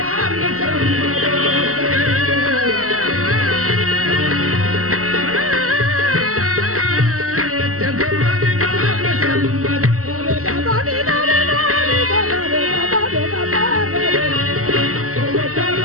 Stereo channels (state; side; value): late; left; 0.64 ms